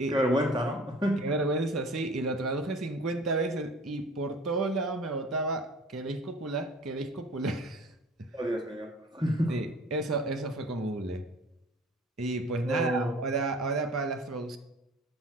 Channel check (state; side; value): normal; both; correlation 0.45